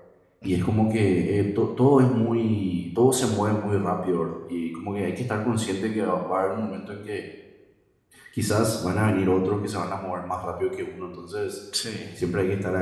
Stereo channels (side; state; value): both; identical; correlation 1.00